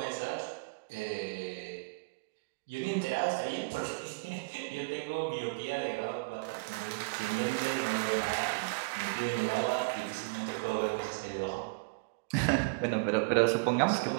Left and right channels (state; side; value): quieter; left; 32.2 dB